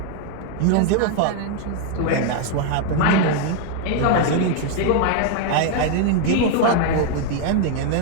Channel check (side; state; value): both; different; correlation 0.00